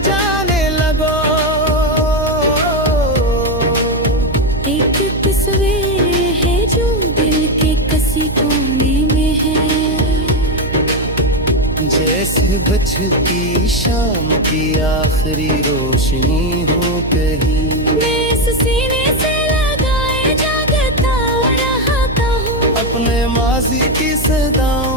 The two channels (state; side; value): noise; right; hum, 7 dB below the sound